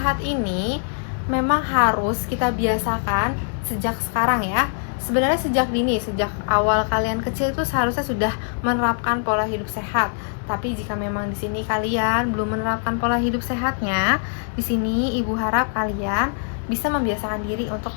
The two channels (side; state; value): right; silent; digital silence